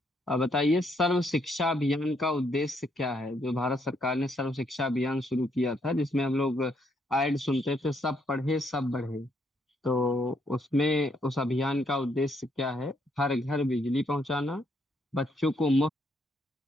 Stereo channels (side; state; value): both; normal; correlation 0.73